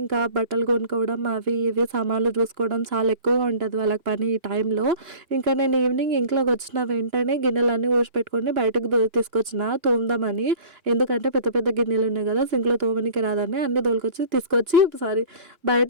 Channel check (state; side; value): late; left; 2.9 ms